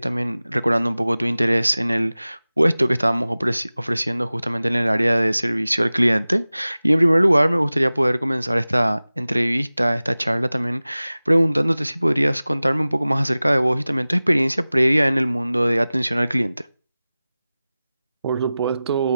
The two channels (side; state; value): both; inverted; correlation -0.98